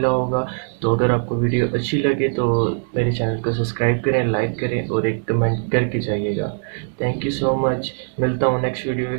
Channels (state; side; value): silent; left; digital silence